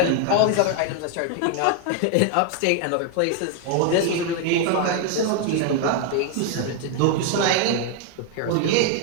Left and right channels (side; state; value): both; different; correlation 0.00